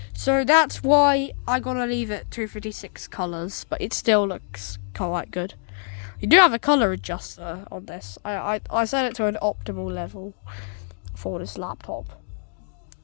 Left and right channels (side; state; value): right; silent; digital silence